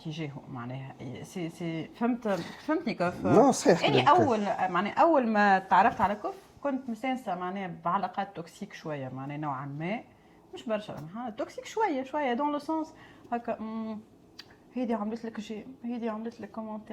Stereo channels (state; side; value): identical; both; correlation 1.00